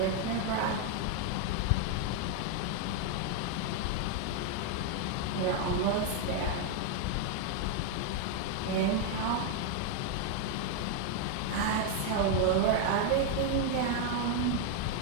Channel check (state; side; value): different; both; correlation 0.01